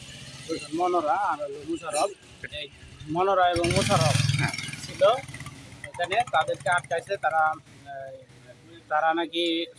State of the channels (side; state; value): both; identical; correlation 1.00